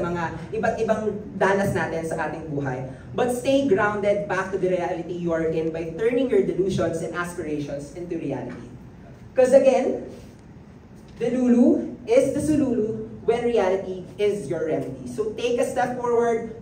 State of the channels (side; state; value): both; identical; correlation 1.00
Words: mga iba't ibang danas natin sa ating buhay. But stay grounded back to the reality you are in by turning your delusions and aspirations into reality. Because again, delulu is the sululu when reality is your remedy. So take a step